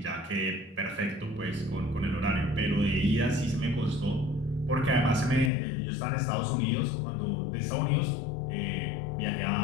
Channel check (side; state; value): right; drops out; at 5.5 s